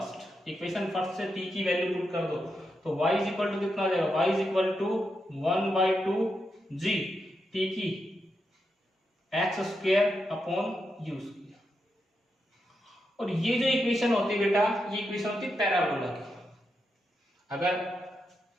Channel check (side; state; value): both; normal; correlation 0.85